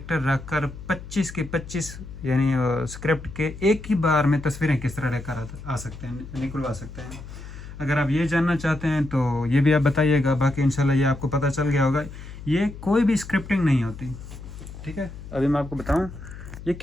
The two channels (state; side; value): noise; left; hum, 13 dB below the sound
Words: रखकर 25 के 25 यानी स्क्रिप्ट के एक ही बार में तस्वीरें किस तरह लेकर आ सकते हैं, निकलवा सकते हैं। अगर आप ये जानना चाहते हैं तो ये भी आप बताइएगा। बाकी इंशाल्लाह ये आपको पता चल गया होगा, ये कोई भी स्क्रिप्टिंग नहीं होती, ठीक है। अभी मैं आपको बताऊं, ये